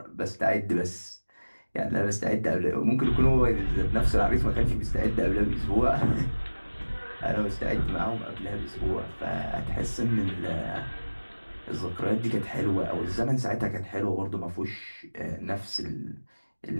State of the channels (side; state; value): both; inverted; correlation -1.00